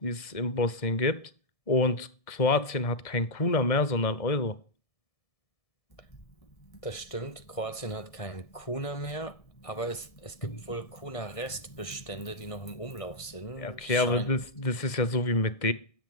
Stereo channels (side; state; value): right; late; 1.7 ms